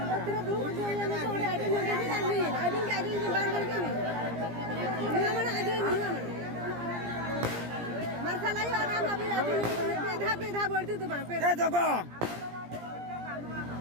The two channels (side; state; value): left; late; 17 ms